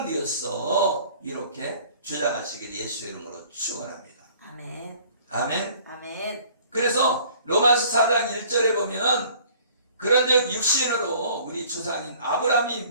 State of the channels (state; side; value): inverted; both; correlation -0.53